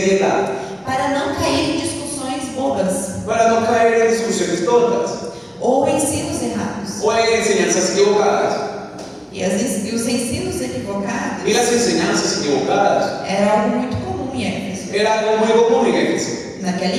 para não cair em discussões bobas para no caer en discusiones tontas ou ensinos errados. o en enseñanzas equivocadas. E os ensinos equivocados Y las enseñanzas equivocadas era algo muito comum em Éfeso. era algo muy común en Éfeso, Naquela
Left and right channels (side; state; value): both; identical; correlation 1.00